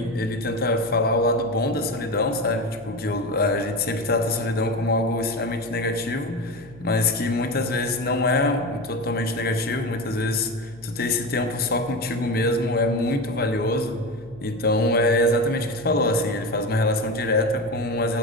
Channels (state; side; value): noise; left; hum, 23 dB below the sound